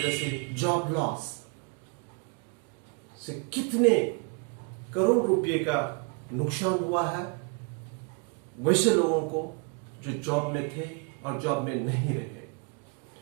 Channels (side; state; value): left; quieter; 31.9 dB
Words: से जॉब लॉस से कितने करोड़ रुपए का नुकसान हुआ है वैसे लोगों को जो जॉब में थे और जॉब में नहीं रहे।